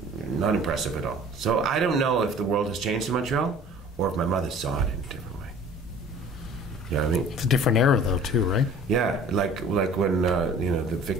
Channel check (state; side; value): normal; both; correlation 0.48